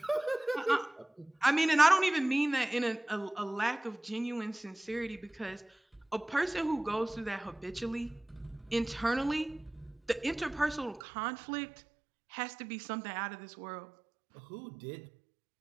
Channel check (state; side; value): drops out; left; at 11.0 s